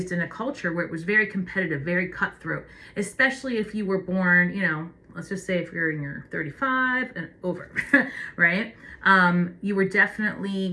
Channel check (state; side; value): identical; both; correlation 1.00